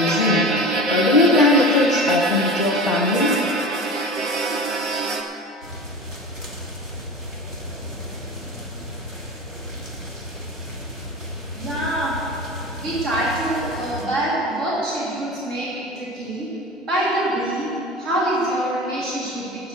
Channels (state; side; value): normal; both; correlation 0.33